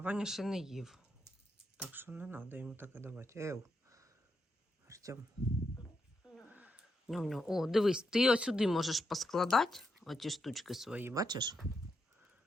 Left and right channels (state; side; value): normal; both; correlation 0.82